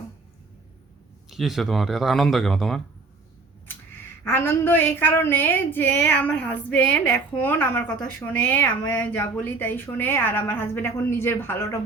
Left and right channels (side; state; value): left; quieter; 3.8 dB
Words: কি হয়েছে তোমার? এত আনন্দ কেন তোমার? আনন্দ এই কারণে যে আমার হাজবেন্ড এখন আমার কথা শোনে, আমি যা বলি তাই শোনে, আর আমার হাজবেন্ড এখন নিজের ভালোটা